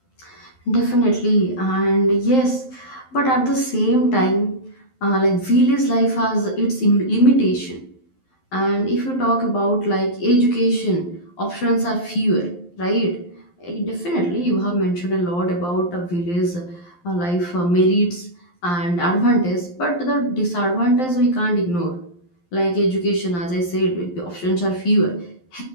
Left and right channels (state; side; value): late; right; 11 ms